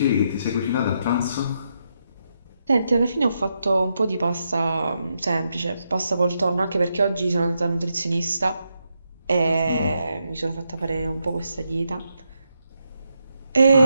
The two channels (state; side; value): inverted; both; correlation -0.82